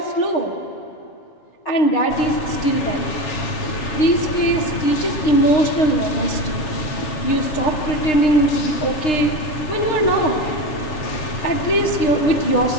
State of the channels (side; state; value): right; late; 6.6 ms